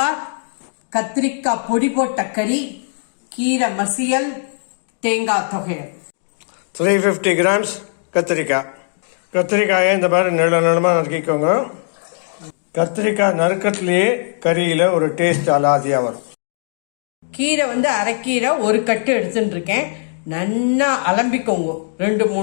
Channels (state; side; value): silent; right; digital silence